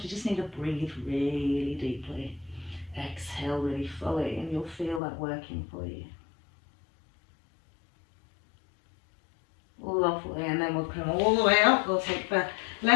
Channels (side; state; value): right; drops out; at 5.0 s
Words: you just need to breathe really deeply. Exhale really fully, and you'll feel that working for you. Lovely, and then we'll come all the way up. We'll take the